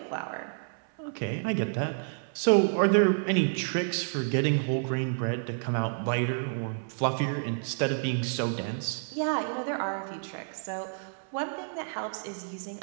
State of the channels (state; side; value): silent; left; 58 dB below the other